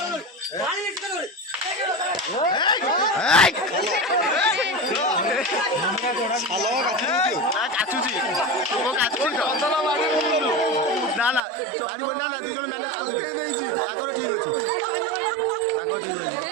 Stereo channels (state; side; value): drops out; left; at 11.4 s